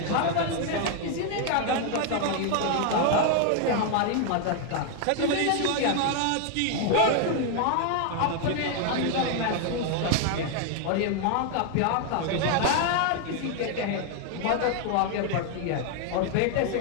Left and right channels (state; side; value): different; both; correlation 0.00